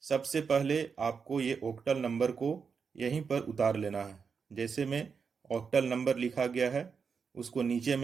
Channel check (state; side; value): quieter; left; 5.8 dB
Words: सबसे पहले आपको ये ऑक्टल नंबर को यहीं पर उतार लेना है। जैसे में ऑक्टल नंबर लिखा गया है उसको नीचे